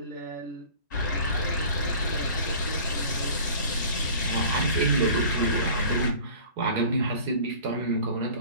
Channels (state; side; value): inverted; both; correlation -0.44